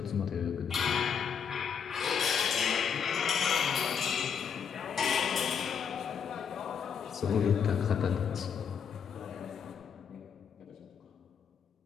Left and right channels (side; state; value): right; quieter; 7.2 dB